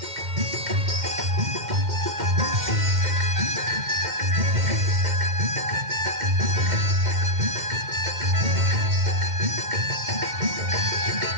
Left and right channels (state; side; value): late; left; 2.1 ms